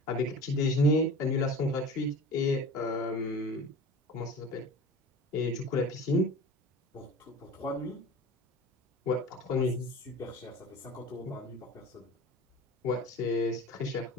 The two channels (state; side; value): normal; both; correlation 0.38